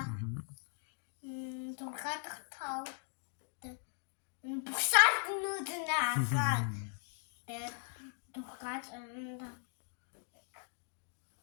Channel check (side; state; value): right; silent; 52 dB below the other